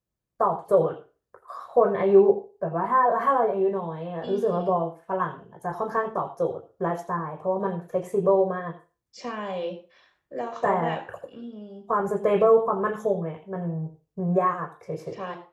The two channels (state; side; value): identical; both; correlation 1.00